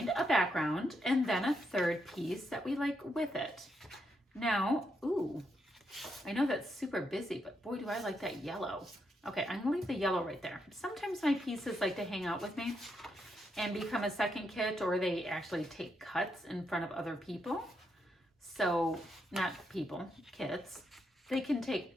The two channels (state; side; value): normal; both; correlation 0.80